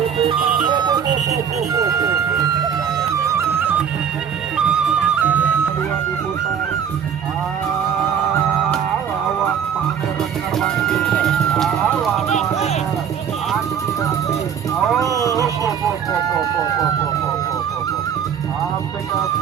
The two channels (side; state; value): left; quieter; 8.0 dB